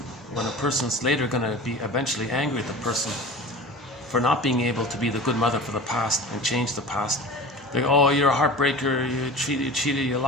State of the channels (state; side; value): normal; both; correlation 0.36